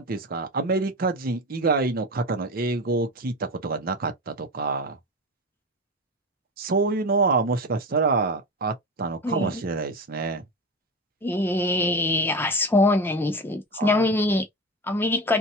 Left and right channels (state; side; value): normal; both; correlation 0.24